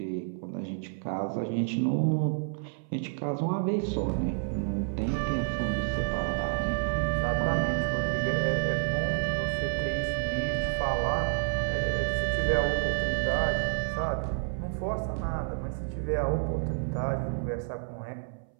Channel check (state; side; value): silent; left; 58 dB below the other